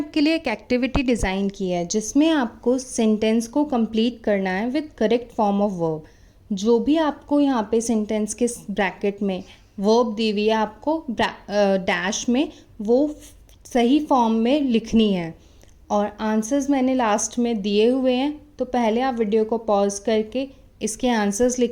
लिए एक एक्टिविटी डिज़ाइन की है जिसमें आपको सेंटेंस को कंप्लीट करना है with correct form of verb. जो भी आपको यहाँ पे सेंटेंस के ब्रैकेट में वर्ब दी हुई है, आपको डैश में वो सही फॉर्म में लिखनी है और आंसर्स मैंने लास्ट में दिए हुए हैं। तो पहले आप वीडियो को पॉज करके इसके आंसर्स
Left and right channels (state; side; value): identical; both; correlation 1.00